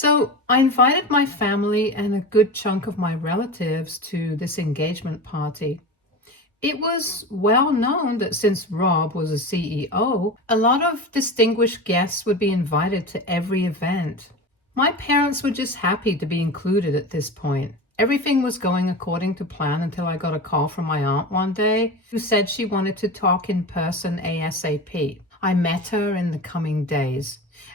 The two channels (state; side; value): normal; both; correlation 0.28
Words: I invited my family and a good chunk of my relatives to this engagement party. It was well known that since Rob was a CEO, a lot of distinguished guests would be invited to every event. My parents were just happy to be included at this point. Everything was going according to plan until I got a call from my aunt one day who said she wanted to talk in person ASAP. I met her in the coming days,